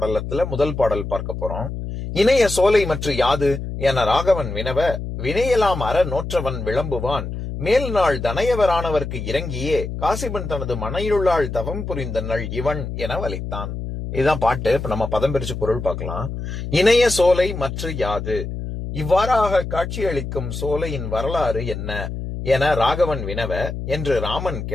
முதல் பாடல் பார்க்க போறோம். இணைய சோலை மற்ற யாது என ராகவன் வினவ வினையெல்லாம் அற நோற்றவன் விளம்புவான் மேல் நாள் தனையவரானவர்க்கு இறங்கியே காசிபன் தனது மனையிலுள்ளாள் தவம் புரிந்த நள் இவன் என வலித்தான். இதுதான் பாட்டு. இப்ப நம்ம பதம் பிரிச்சு பொருள் பார்க்கலாம். இணைய சோலை மற்ற யாது, இவ்வாறாக காட்சியளிக்கும் சோலையின் வரலாறு என்ன என ராகவன் வினவ என்று ராமன்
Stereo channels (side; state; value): left; noise; hum, 6 dB below the sound